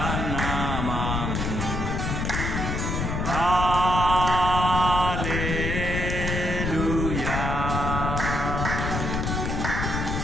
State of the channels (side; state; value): left; noise; rumble, 1 dB below the sound